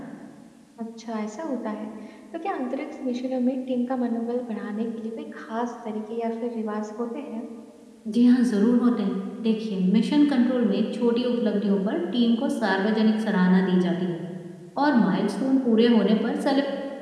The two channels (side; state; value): both; identical; correlation 1.00